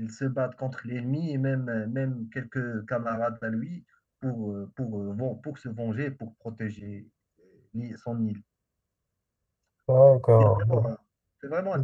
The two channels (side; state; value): both; identical; correlation 1.00